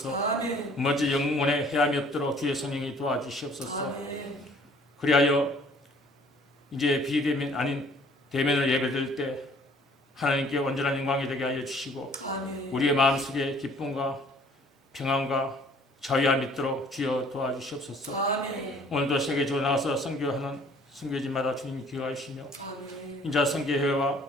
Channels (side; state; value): both; normal; correlation 0.56